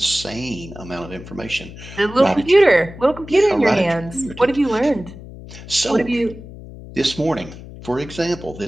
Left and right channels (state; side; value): noise; left; hum, 15 dB below the sound